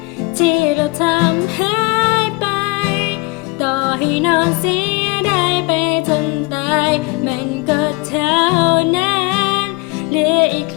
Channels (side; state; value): right; quieter; 26.9 dB